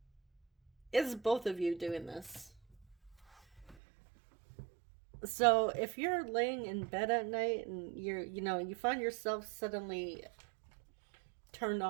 both of you doing this. So if you're laying in bed at night and you find yourself suddenly turned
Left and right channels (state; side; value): drops out; left; at 3.8 s